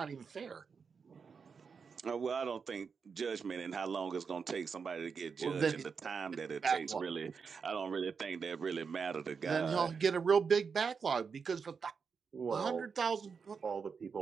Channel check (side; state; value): left; quieter; 5.7 dB